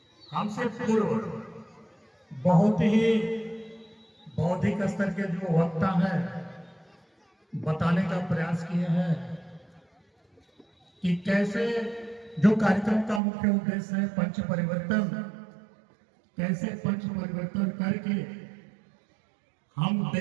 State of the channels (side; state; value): left; drops out; at 13.2 s